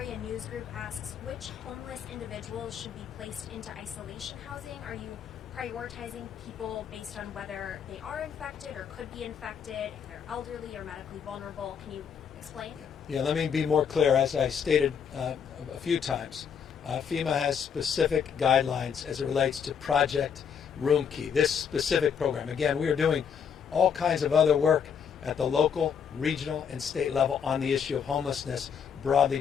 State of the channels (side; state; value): right; quieter; 7.3 dB